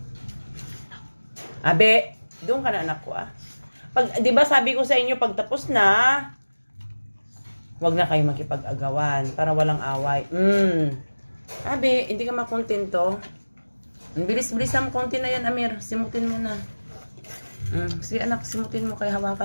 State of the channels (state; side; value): inverted; both; correlation -1.00